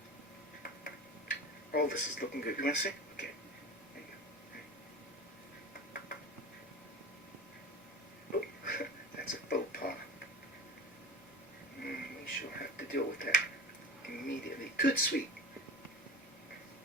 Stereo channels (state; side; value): normal; both; correlation 0.33